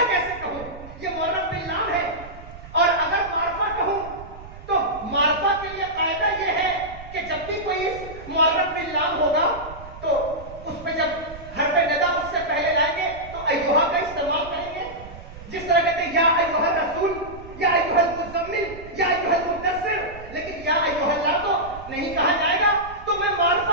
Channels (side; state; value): right; noise; rumble, 16 dB below the sound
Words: کیسے کہوں؟ یہ معرف باللام ہے. اور اگر معرفہ کہوں تو معرفہ کے لیے قاعدہ یہ ہے کہ جب بھی کوئی اس معرف باللام ہوگا تو اس پہ جب حرف ندا اس سے پہلے لائیں گے تو ایھا کا استعمال کریں گے. جس طرح کہتے ہیں یا ایھا الرسول، یا ایھا المزمل، یا ایھا المدثر، لیکن یا ایھا اللہ تو نہیں کہا جائے گا. تو میں